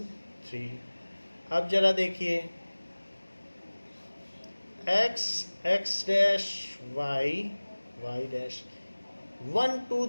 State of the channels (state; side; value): inverted; both; correlation -1.00